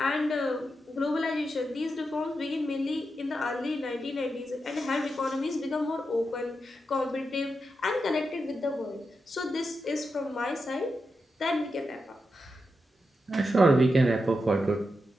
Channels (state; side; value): normal; both; correlation 0.87